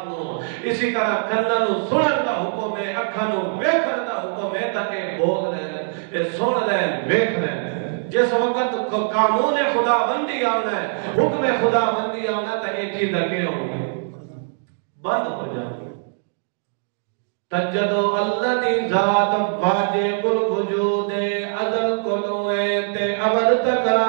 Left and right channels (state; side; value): silent; left; digital silence